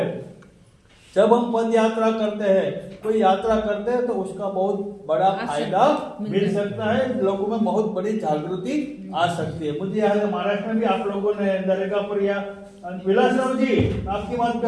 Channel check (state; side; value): identical; both; correlation 1.00